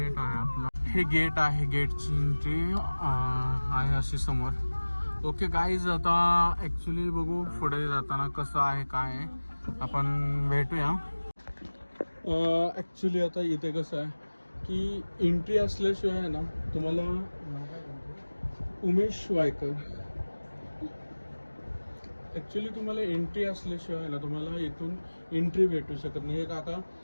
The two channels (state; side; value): inverted; both; correlation -1.00